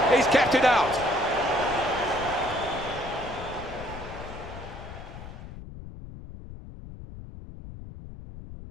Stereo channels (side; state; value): left; noise; rumble, 13 dB below the sound